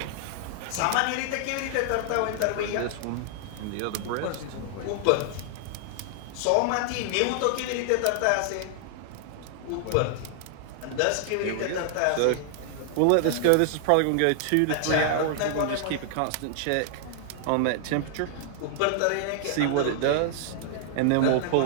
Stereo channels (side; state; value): both; different; correlation -0.01